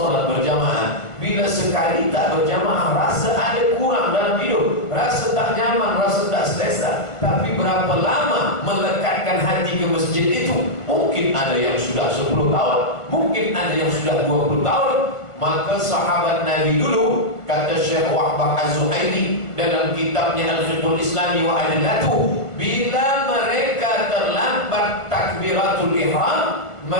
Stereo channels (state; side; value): late; right; 1.4 ms